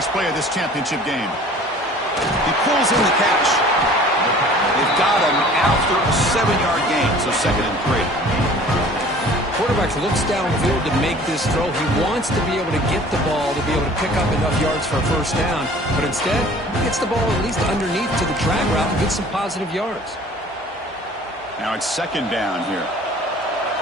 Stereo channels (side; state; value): both; normal; correlation 0.48